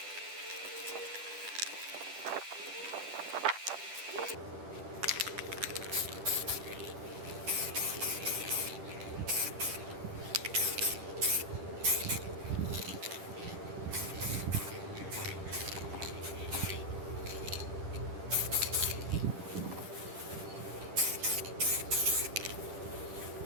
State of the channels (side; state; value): left; late; 10 ms